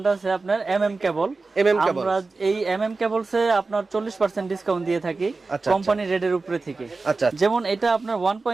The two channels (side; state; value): left; quieter; 3.8 dB